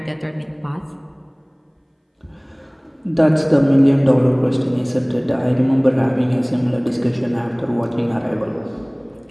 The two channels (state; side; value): identical; both; correlation 1.00